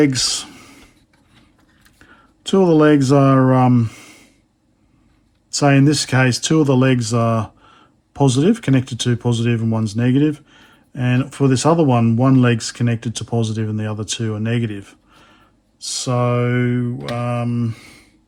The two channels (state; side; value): identical; both; correlation 1.00